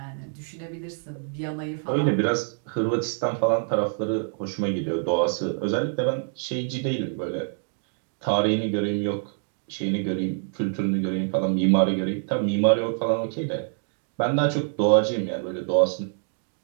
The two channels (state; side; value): silent; left; 61 dB below the other